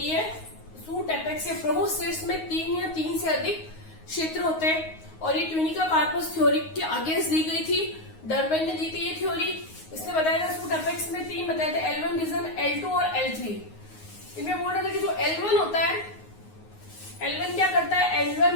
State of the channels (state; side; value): late; right; 9.5 ms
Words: है, सूट एपेक्स या प्रोहोसिट्स में 3 या 3 से अधिक क्षेत्र होते हैं, और ये ट्यूनिका कार्पस थ्योरी के अगेंस्ट दी गई थी। डर्बेन ने दी थी ये थ्योरी। इसने बताया था सूट एपेक्स में 3 बताए थे, L1 रीजन, L2 और L3। इनमें बोल रहा था कि जो L1 होता है, L1 क्या करता है,